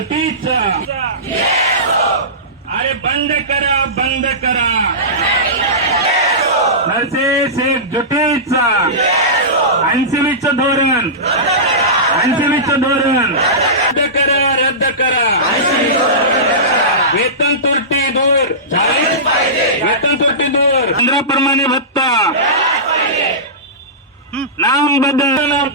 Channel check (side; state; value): both; normal; correlation -0.19